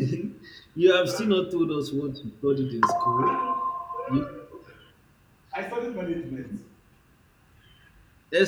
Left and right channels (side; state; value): both; identical; correlation 1.00